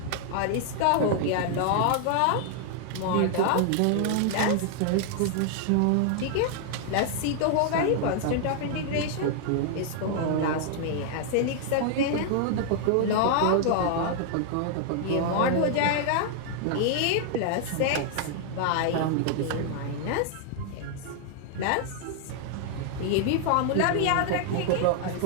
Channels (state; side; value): different; both; correlation 0.00